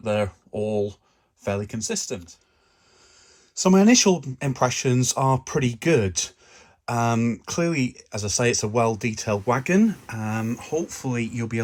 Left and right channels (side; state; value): both; identical; correlation 1.00